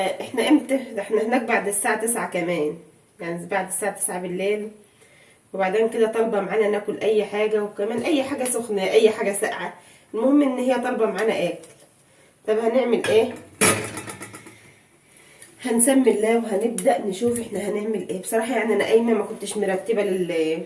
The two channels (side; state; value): both; identical; correlation 1.00